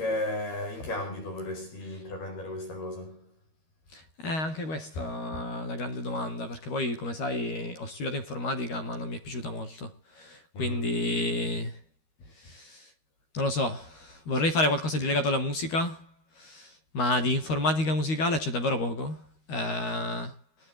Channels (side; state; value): right; late; 13 ms